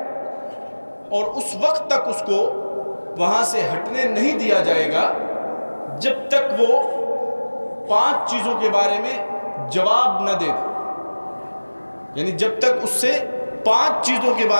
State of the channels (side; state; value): both; inverted; correlation -1.00